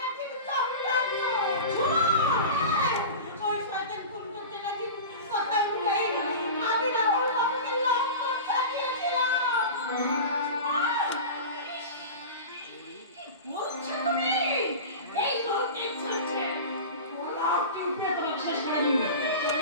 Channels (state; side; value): inverted; both; correlation -0.30